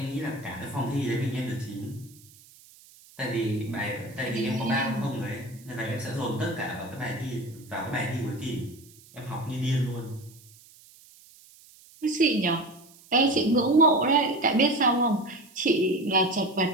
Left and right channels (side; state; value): right; noise; hiss, 24 dB below the sound